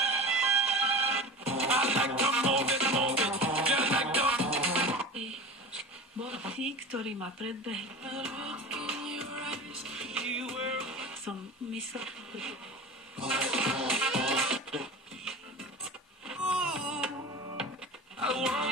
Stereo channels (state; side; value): normal; both; correlation 0.33